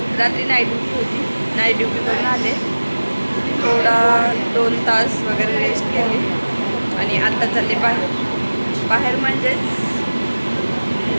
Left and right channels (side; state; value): both; inverted; correlation -1.00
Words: रात्री नाईट ड्युटी होती, नाईट ड्युटी करून आले, थोडा 2 तास वगैरे रेस्ट केली आणि आत्ता चालले बाहेर म्हणजेच